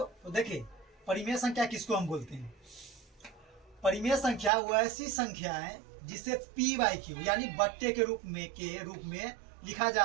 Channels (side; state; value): left; drops out; at 4.5 s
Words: तो देखिए परिमेय संख्या किसको हम बोलते हैं। परिमेय संख्या वो ऐसी संख्या है जिसे पी बाई क्यू यानी बट्टे के रूप में लिखा